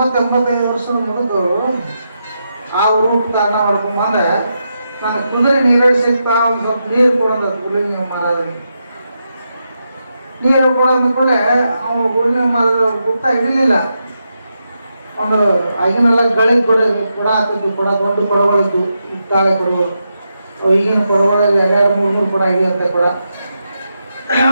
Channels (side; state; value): both; inverted; correlation -0.85